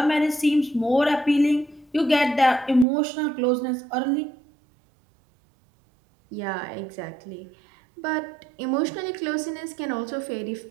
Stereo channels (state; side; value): drops out; left; at 2.9 s